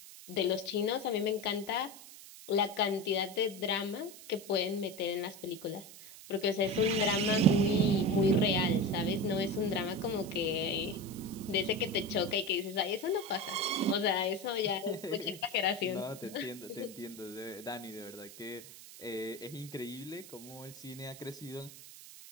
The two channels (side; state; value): right; noise; hiss, 16 dB below the sound